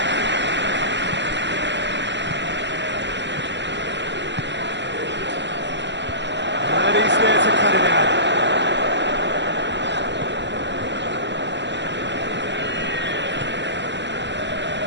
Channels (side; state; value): left; late; 0.52 ms